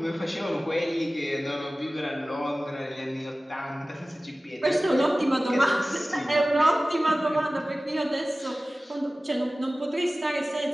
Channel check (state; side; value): normal; both; correlation 0.97